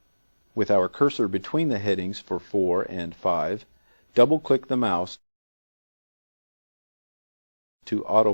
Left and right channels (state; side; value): inverted; both; correlation -1.00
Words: With our cursor between the headings for 4 and 5, double-click the mouse to